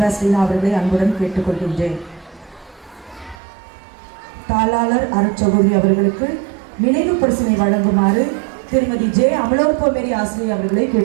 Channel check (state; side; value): drops out; left; at 3.4 s